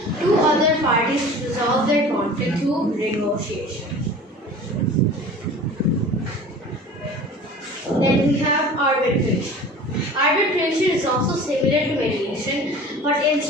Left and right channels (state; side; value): normal; both; correlation 0.40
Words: two other parties to resolve their conflict through negotiation. Then we have arbitration. Arbitration is also similar to mediation, but